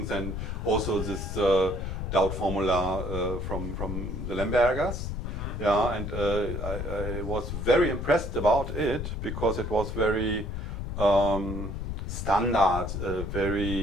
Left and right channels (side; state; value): left; noise; rumble, 4 dB below the sound